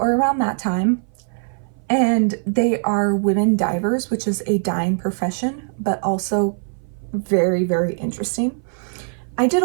around that time. And they are women divers, which is a dying profession, but also very, very interesting. I did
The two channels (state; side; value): silent; left; 57 dB below the other